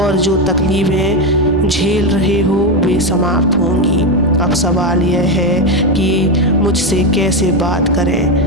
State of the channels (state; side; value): normal; both; correlation 0.11